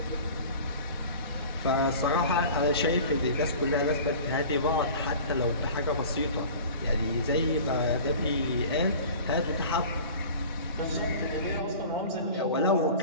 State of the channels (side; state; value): both; inverted; correlation -0.41